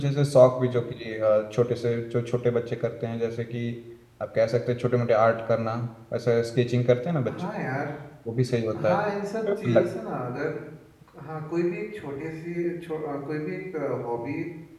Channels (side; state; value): both; identical; correlation 1.00